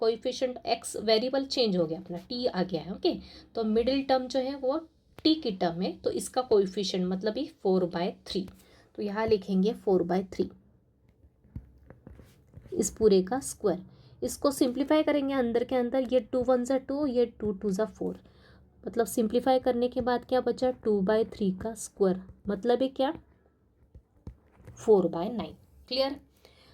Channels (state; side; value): identical; both; correlation 1.00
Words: x वेरिएबल चेंज हो गया, अपना t आ गया है। ओके, तो मिडिल टर्म जो है वो t की टर्म है, तो इसका कोएफिशिएंट मतलब ही 4/3, तो यहाँ लिखेंगे 4/3, इस पूरे का स्क्वायर। इसको सिंप्लीफाई करेंगे अंदर के अंदर, ये 2 × 1 = 2, ये 2 × 2 = 4, मतलब सिंप्लीफाई करने के बाद क्या बचा, 2/3 का स्क्वायर, मतलब है क्या, 4/9। क्लियर।